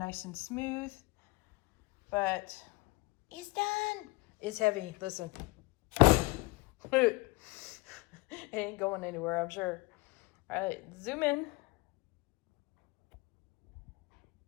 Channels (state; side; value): quieter; right; 23.9 dB